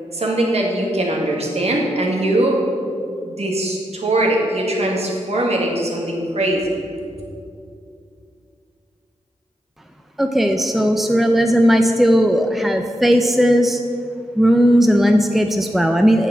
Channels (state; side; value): normal; both; correlation 0.85